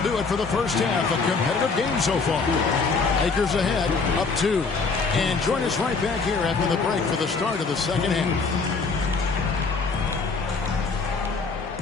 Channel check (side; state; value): right; quieter; 4.5 dB